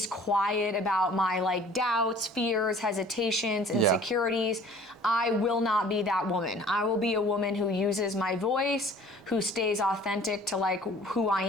quiet about my like doubts, fears, hesitations, insecurities. I will not be that woman. I will be a woman who uses my voice, who stays authentic to like who I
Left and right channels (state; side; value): normal; both; correlation 0.50